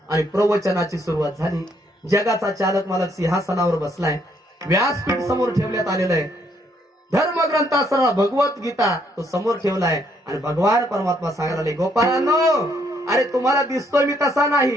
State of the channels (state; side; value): normal; both; correlation 0.70